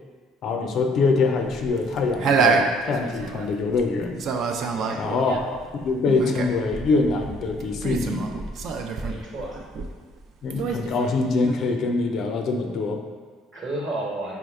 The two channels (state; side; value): normal; both; correlation 0.61